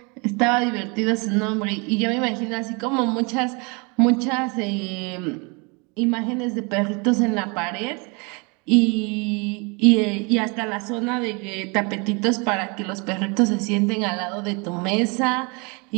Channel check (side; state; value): left; quieter; 30.8 dB